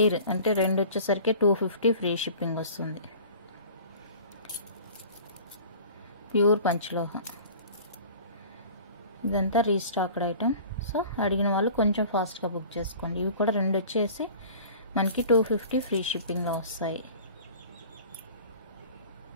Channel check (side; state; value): both; inverted; correlation -0.44